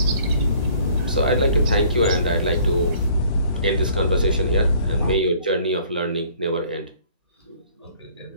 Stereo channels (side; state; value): both; inverted; correlation -0.57